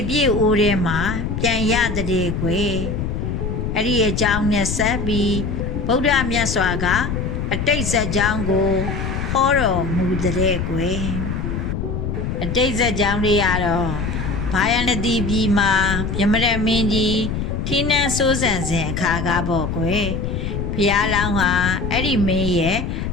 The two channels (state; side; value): noise; left; rumble, 3 dB below the sound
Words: ပြည့်အိုးထဲမှာပြန်ရတဲ့ကွယ်အဲ့ဒီအကြောင်းနဲ့ဆက်ပြီးဗုဒ္ဓမြတ်စွာကအတိတ်ဇာတ်ကြောင်းကိုဟောတော်မူတဲ့ကွယ်အတိတ်ဇာတ်ကြောင်းတွေကတော့ဘာယနတိပြည်မှာမြမရမင်းကြီးထီးနှန်းစိုးစံစဉ်အခါကပေါ့ကွယ်ဘုရားလောင်းဟာအဲ့ဒီမင်းရဲ့